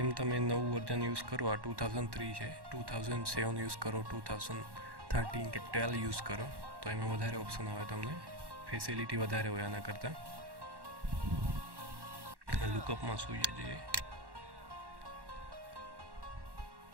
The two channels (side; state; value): left; late; 1.1 ms